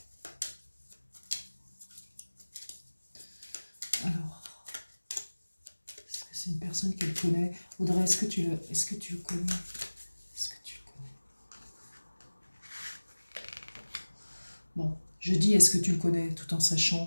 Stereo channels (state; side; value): inverted; both; correlation -1.00